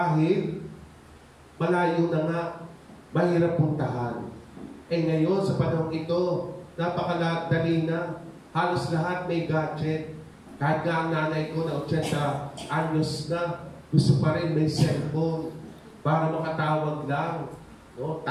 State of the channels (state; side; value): identical; both; correlation 1.00